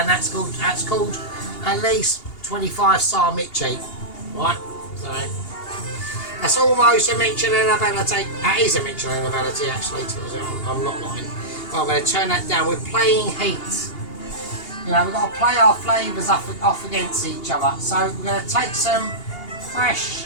that's called at least 25 star Michi, right? So that's almost a Michelin ability. That is a Michelin ability actually. I'm not lying. Well, I'm going to turn that down. We're playing heat. You know, we've got to play our flavours off against each other. So we're going to take some fresh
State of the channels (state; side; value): late; right; 2.8 ms